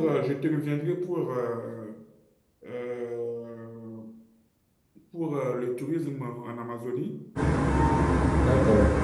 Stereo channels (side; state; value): both; identical; correlation 1.00